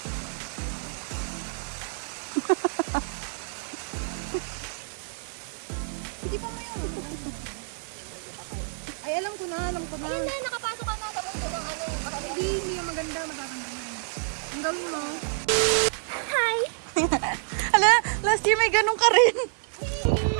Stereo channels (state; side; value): silent; left; 59 dB below the other